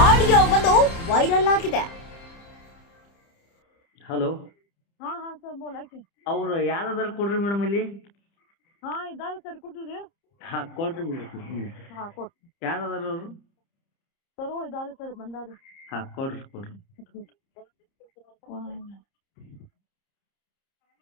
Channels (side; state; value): right; late; 30 ms